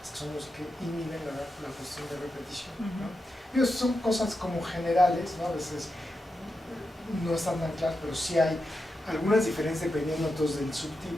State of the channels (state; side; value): normal; both; correlation 0.88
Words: que son los que inhiben la cuestión de repetición, ¿no? Y eso son cosas como generales, ¿no? A veces no están tan claras, pero sí hay algunas diferencias dependiendo entonces del